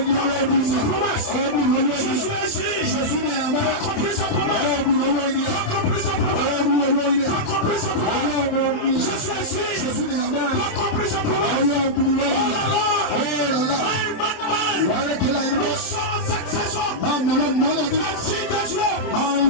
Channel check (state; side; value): late; right; 27 ms